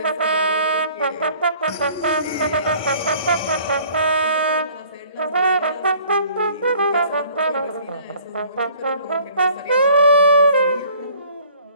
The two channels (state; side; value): inverted; both; correlation -0.54